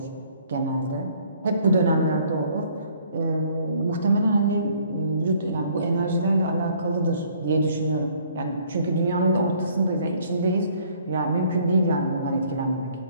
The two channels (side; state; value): both; inverted; correlation -0.60